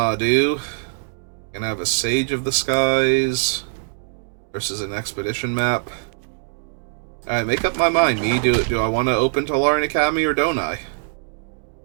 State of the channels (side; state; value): left; silent; digital silence